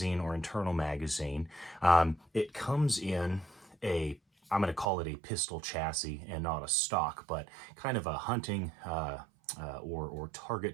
or internal magazine. It comes in I'm going to call it a pistol chassis and not a stock, but kind of a hunting or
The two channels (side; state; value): left; drops out; at 4.9 s